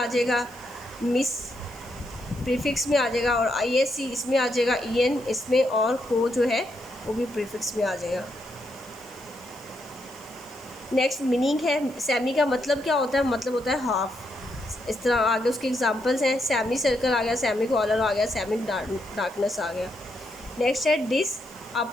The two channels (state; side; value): noise; left; hiss, 24 dB below the sound